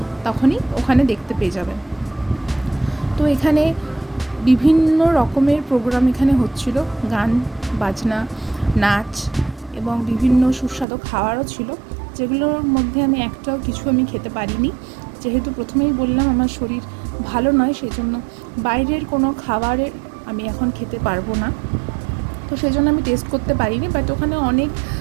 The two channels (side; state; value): left; drops out; at 10.9 s